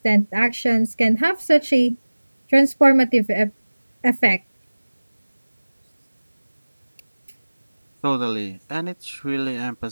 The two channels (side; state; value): both; inverted; correlation -1.00